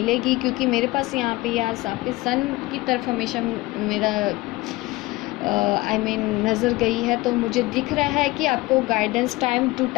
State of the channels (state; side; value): quieter; right; 20.5 dB